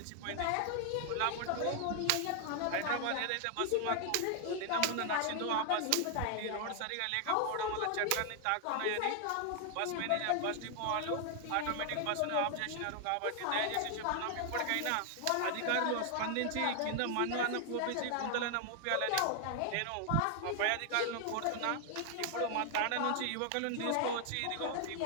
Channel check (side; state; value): both; different; correlation 0.00